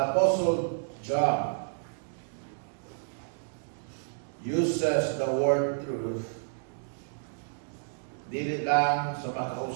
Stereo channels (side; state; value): left; silent; digital silence